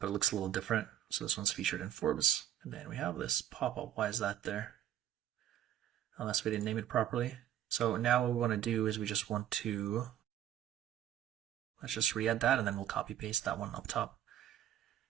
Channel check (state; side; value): quieter; left; 11.4 dB